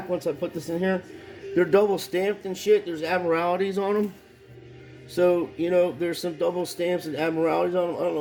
once I put this in here. They're double stamped and shit. There's admiralities on them. So, you know, there's some double stamps and admiralities on them. I don't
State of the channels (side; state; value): both; identical; correlation 1.00